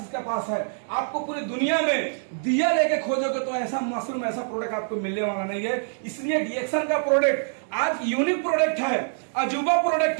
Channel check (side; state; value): left; silent; digital silence